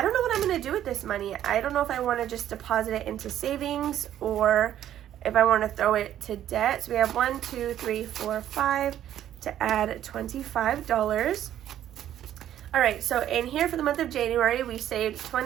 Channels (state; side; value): quieter; left; 11.4 dB